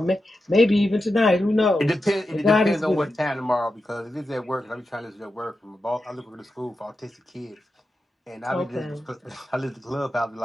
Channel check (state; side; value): normal; both; correlation 0.90